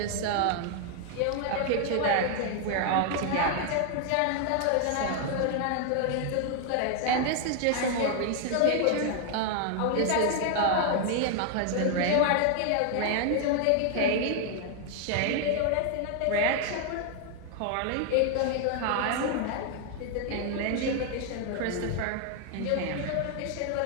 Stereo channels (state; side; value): different; both; correlation 0.00